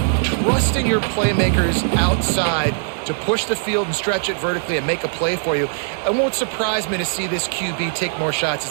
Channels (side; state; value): left; silent; digital silence